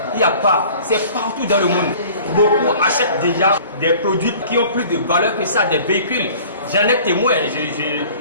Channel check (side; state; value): both; inverted; correlation -0.47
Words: il n'y a pas. C'est partout dans le monde. Beaucoup achètent déjà des produits qui ont plus de valeur que ça, des véhicules. J'en ai témoin,